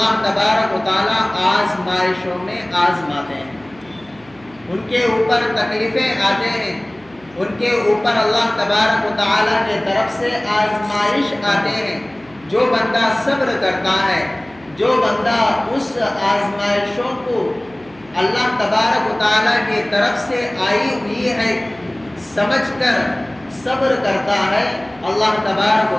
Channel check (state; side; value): noise; right; hum, 28 dB below the sound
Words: تبارک و تعالی آزمائشوں میں آزماتے ہیں، ان کے اوپر تکلیفیں آتے ہیں، ان کے اوپر اللہ تبارک و تعالی کے طرف سے آزمائش آتے ہیں۔ جو بندہ صبر کرتا ہے، جو بندہ اس آزمائشوں کو اللہ تبارک و تعالی کی طرف سے آئی ہوئی ہے سمجھ کر صبر کرتا ہے، اللہ تبارک و